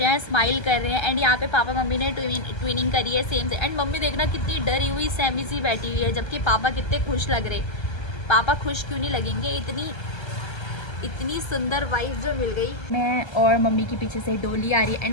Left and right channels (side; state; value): right; late; 1.3 ms